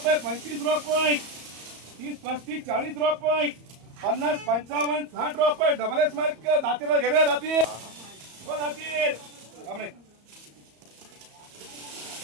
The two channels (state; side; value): late; left; 34 ms